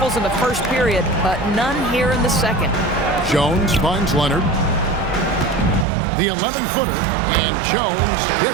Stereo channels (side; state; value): left; drops out; at 5.9 s